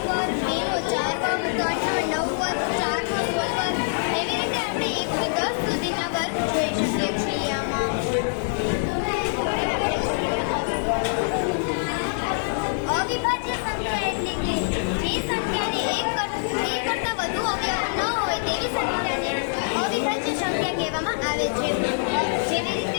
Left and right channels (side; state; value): right; silent; 60 dB below the other